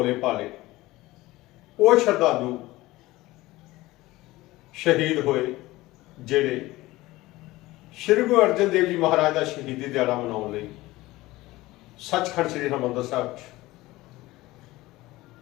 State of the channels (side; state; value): right; quieter; 18.8 dB